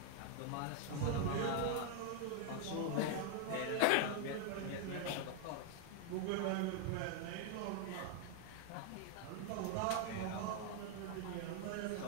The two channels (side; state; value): both; different; correlation 0.00